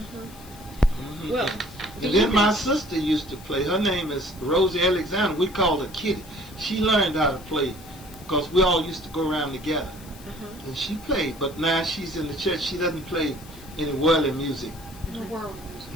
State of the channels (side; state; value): left; noise; hiss, 20 dB below the sound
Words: Well, And then my sister used to play. Her name is Rosie Alexander. We called her Kitty. She learned how to play because we all used to go around together. And she played, but now she's in the church. She doesn't play any worldly music. The world music.